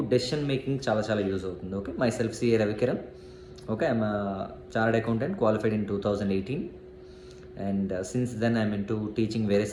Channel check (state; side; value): identical; both; correlation 1.00